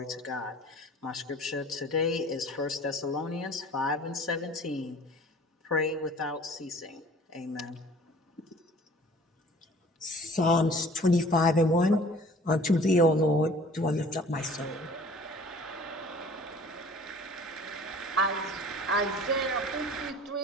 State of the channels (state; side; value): normal; both; correlation 0.49